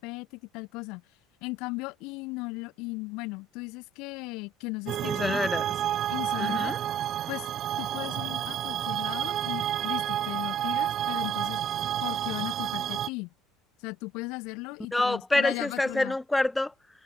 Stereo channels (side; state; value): both; normal; correlation 0.62